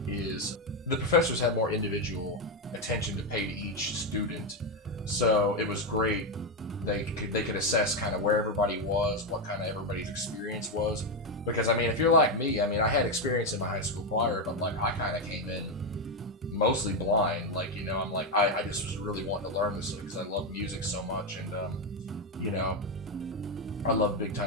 is the professors had more individual attention to pay to each student, so it was great. They could assess kind of where everybody was, what kind of everybody's experience was, because I mean, if you're like me, I mean, I had experience in my high school choir, but like I kind of came in mostly blind, like, I'm like, I just was really wanting to learn this because I love music so much, and I love Big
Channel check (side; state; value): both; normal; correlation 0.07